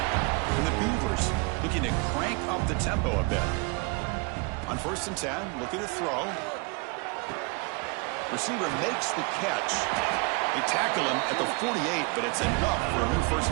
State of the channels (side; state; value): left; quieter; 30.8 dB